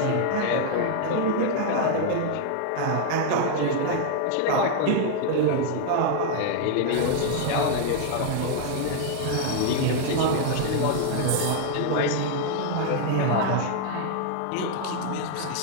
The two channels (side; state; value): both; different; correlation 0.00